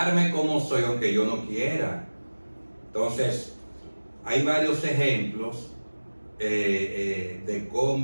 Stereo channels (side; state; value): both; inverted; correlation -1.00